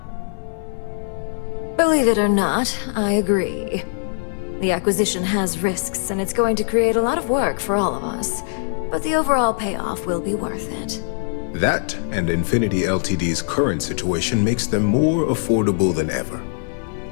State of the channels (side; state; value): right; silent; 56 dB below the other